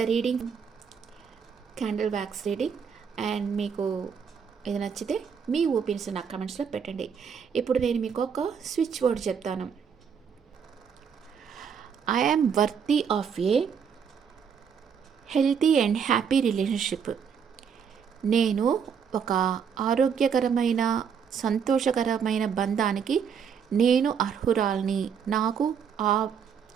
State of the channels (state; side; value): quieter; left; 7.0 dB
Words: reading, candle wax reading. And మీకు ఇది నచ్చితే మీ ఒపీనియన్స్ నాకు కమెంట్స్లో పెట్టండి. ఇప్పుడు నేను మీకు ఒక స్విచ్ వర్డ్ చెప్తాను. I am worthy of a healthy and happy relationship. నేను ఒక ఆరోగ్యకరమైన సంతోషకరమైన బంధానికి నేను అర్హురాల్ని, నాకు ఆ